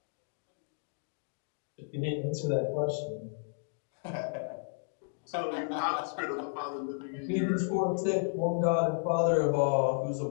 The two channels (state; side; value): silent; right; digital silence